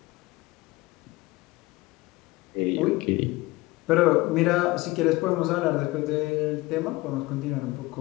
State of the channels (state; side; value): quieter; right; 20.9 dB